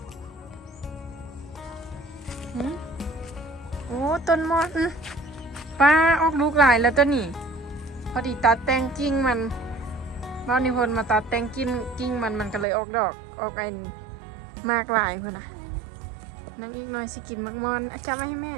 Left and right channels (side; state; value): left; drops out; at 12.7 s